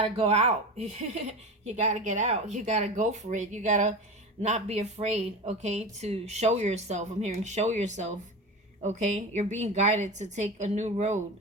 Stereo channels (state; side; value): normal; both; correlation 0.27